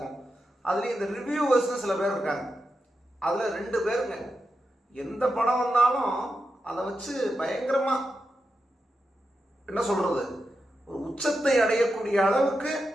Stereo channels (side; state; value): both; normal; correlation 0.88